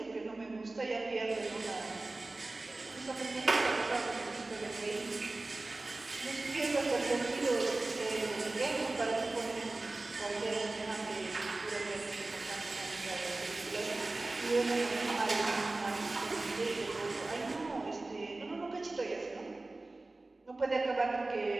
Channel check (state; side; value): quieter; left; 3.1 dB